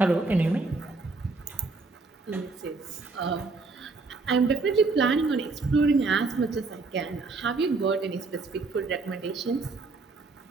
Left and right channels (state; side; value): quieter; left; 3.8 dB